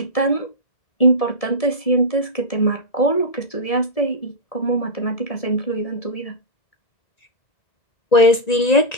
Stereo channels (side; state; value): right; late; 1.9 ms